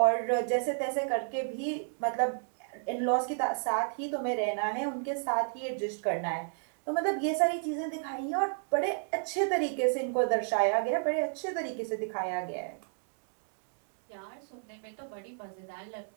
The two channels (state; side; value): silent; left; digital silence